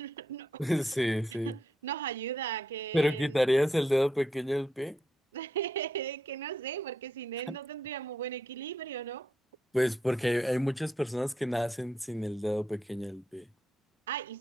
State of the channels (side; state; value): both; normal; correlation 0.80